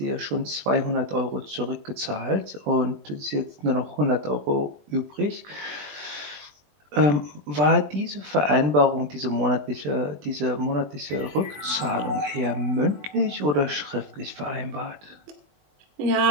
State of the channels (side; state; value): left; late; 20 ms